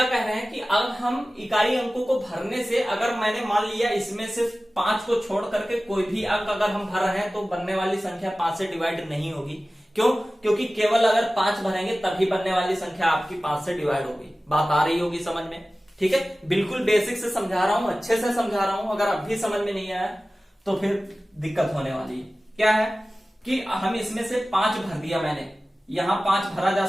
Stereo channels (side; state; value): both; normal; correlation 0.97